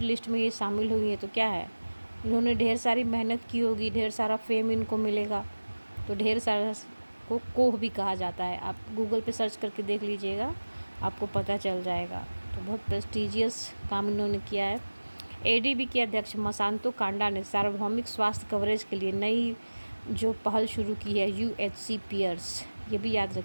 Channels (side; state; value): both; inverted; correlation -1.00